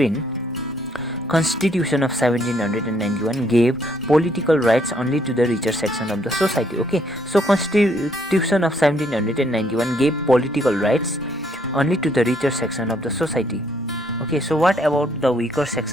Constitution of 1791 gave political rights only to the richer section of the society, okay. So Constitution of 1791 gave political rights only to the richer section of the society, okay. So what about the weaker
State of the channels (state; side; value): normal; both; correlation 0.69